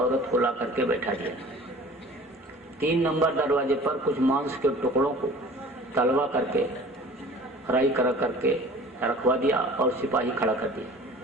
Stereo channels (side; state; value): both; normal; correlation 0.45